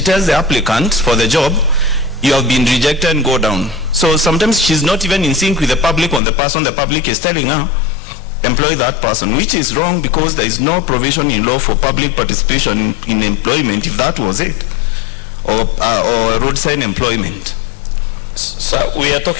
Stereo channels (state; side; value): drops out; right; at 6.2 s